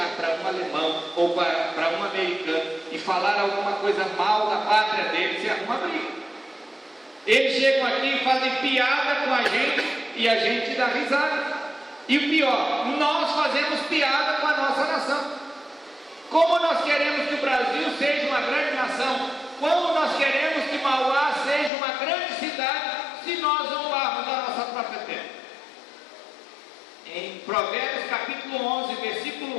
para um alemão ou para um americano e falar alguma coisa mal da pátria dele, você arruma briga. Eles chegam aqui e fazem piada com a gente e a gente dá risada. E o pior, nós fazemos piada com a nossa nação. Como nós queremos que o Brasil seja uma grande nação, como nós queremos que Mauá seja uma grande cidade, se nós zombarmos da nossa própria terra. Em Provérbios capítulo 11,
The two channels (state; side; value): drops out; right; at 21.7 s